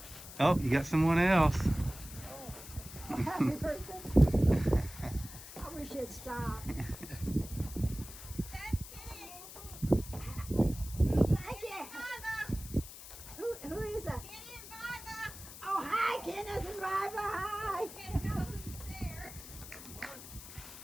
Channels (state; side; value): noise; left; hiss, 14 dB below the sound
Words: Oh, you got someone else. Oh, happy birthday. I wish it'd stop. Who is that? Oh, hi, Kenneth and Viva. Hi.